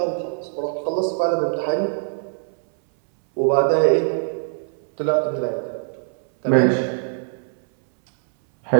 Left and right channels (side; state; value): left; silent; 63 dB below the other